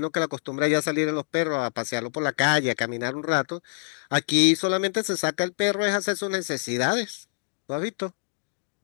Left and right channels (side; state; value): right; silent; digital silence